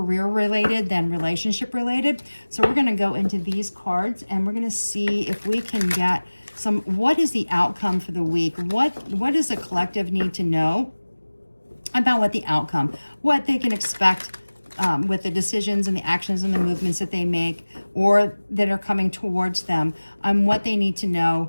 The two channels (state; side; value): inverted; both; correlation -1.00